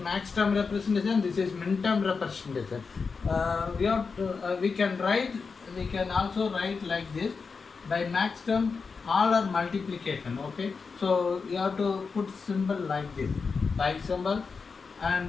max term representation, this is min term representation. We can also write like this. By max term, all are multiplication. Okay, so you have to put symbol like this, like symbol,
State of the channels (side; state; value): right; quieter; 5.0 dB